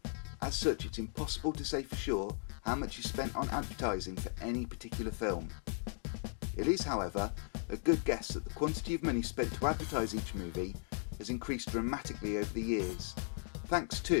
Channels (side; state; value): right; silent; 53 dB below the other